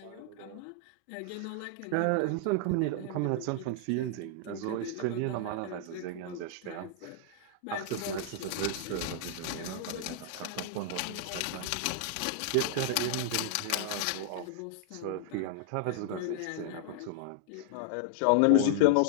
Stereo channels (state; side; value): different; both; correlation 0.00